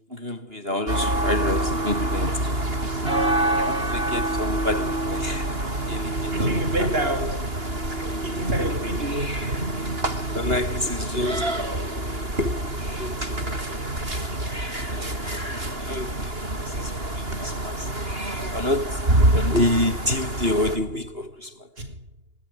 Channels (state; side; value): late; left; 2.9 ms